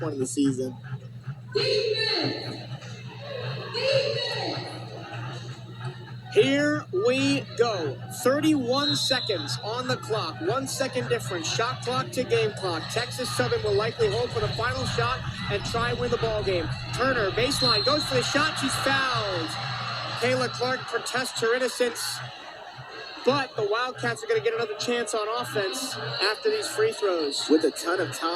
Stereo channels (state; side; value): identical; both; correlation 1.00